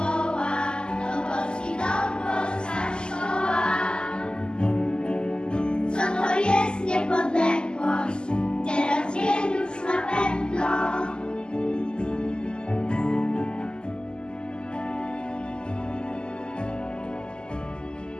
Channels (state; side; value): late; right; 0.047 ms